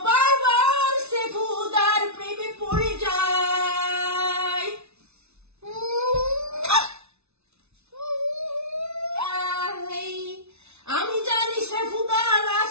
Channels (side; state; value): left; late; 0.81 ms